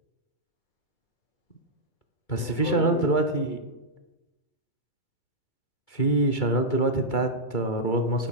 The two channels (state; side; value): late; right; 2.3 ms